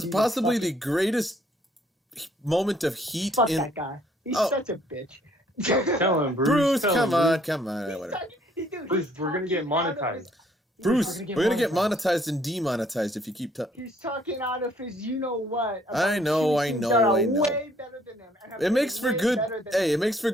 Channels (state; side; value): normal; both; correlation 0.64